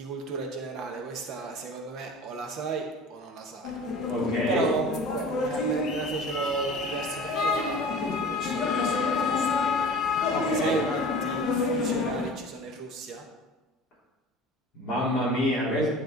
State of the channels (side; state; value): both; normal; correlation 0.40